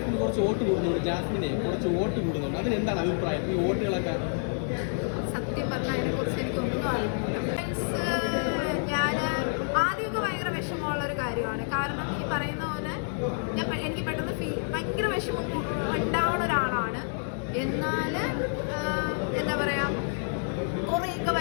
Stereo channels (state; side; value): silent; right; digital silence